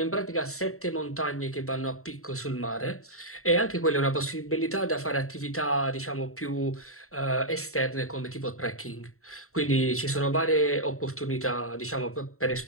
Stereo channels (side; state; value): right; late; 0.63 ms